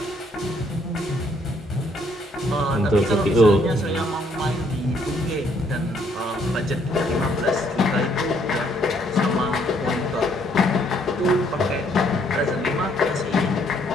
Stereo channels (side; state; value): both; normal; correlation 0.68